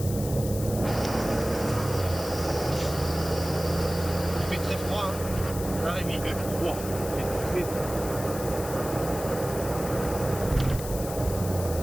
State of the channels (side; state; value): left; noise; hiss, 11 dB below the sound